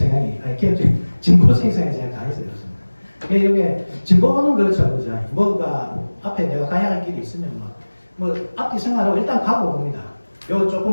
아니 개혁주의 진보적인 성향이 제가 강해서 그렇습니다. 이게 진보는 그렇죠, 그죠? 뭐가 앞에 내가 가야 할 길이 있으면 뭐 앞뒤 생각하고 일단 가고 봅니다. 요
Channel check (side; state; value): both; inverted; correlation -1.00